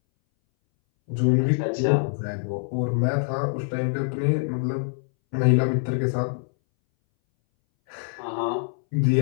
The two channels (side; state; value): right; silent; 61 dB below the other